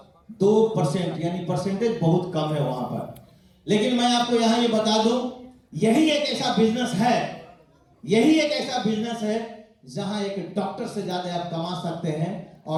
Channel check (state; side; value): identical; both; correlation 1.00